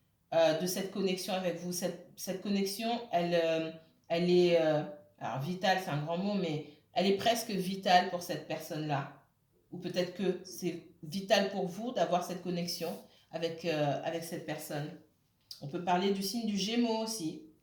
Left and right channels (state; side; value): identical; both; correlation 1.00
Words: de cette connexion avec vous. Cette connexion, elle est, alors vitale, c'est un grand mot, mais elle est presque vitale pour cette personne-là. Ou peut-être que c'est vital pour vous d'avoir cette connexion avec cette personne. On peut parler du signe du Gémeaux aussi.